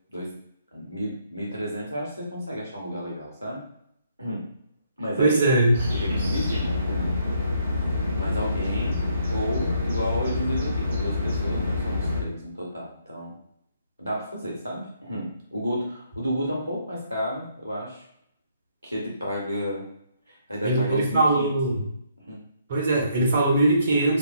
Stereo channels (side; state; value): both; inverted; correlation -0.70